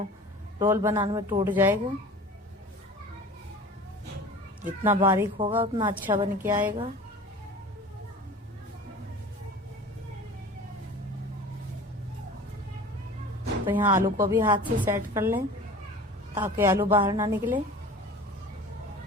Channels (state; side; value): normal; both; correlation 0.40